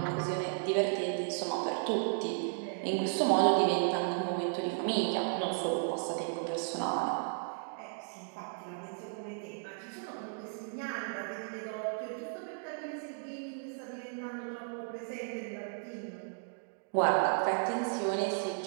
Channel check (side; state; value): left; silent; digital silence